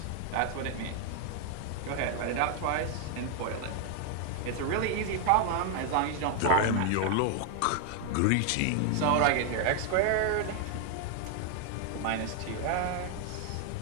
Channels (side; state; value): both; different; correlation 0.00